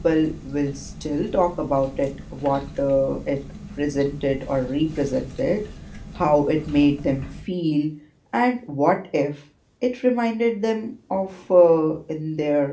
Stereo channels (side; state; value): both; identical; correlation 1.00